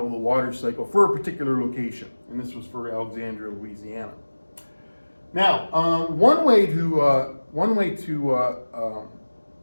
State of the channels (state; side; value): inverted; both; correlation -1.00